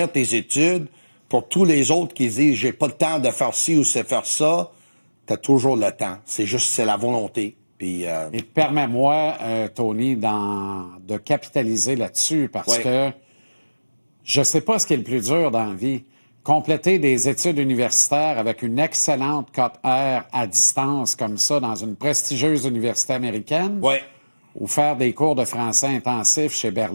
tes études, pour tous les autres qui disent « j'ai pas le temps de faire ci ou de faire ça », t'as toujours le temps. C'est la volonté. Puis, Et permets-moi, Tony, de capitaliser là-dessus parce que je sais pas ce qui est le plus dur dans la vie. Compléter des études universitaires avec une excellente cote R à distance comme ça dans une prestigieuse université américaine ou faire des cours de français intensifs chez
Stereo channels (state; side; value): inverted; both; correlation -1.00